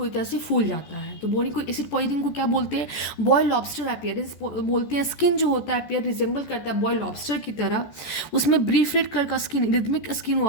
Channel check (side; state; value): right; late; 14 ms